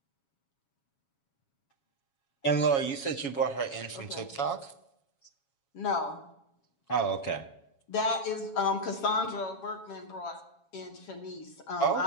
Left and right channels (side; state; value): right; late; 7.2 ms